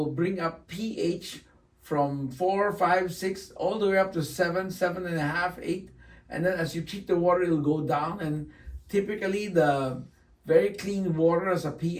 bring up pH from 4, 5, 6, all the way up to 7, 7.5, 8. And then as you treat the water, it'll go down. And typically, the very clean water has a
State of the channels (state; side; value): identical; both; correlation 1.00